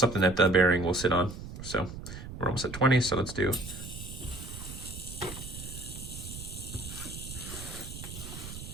that the bearing will sit on. So we're almost at 20, so let's do.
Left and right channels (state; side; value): noise; right; rumble, 10 dB below the sound